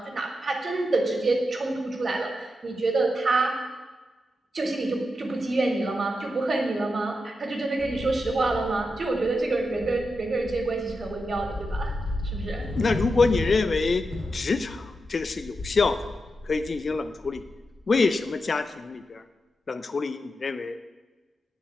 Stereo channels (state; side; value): normal; both; correlation 0.87